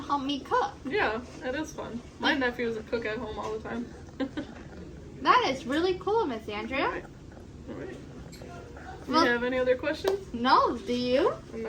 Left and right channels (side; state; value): both; identical; correlation 1.00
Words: help me cook. Yeah, that is fun. My nephew is a cook at home all the time. That is really cool, Miss Andrea. All right. Do Well- you have any other questions? No, do you?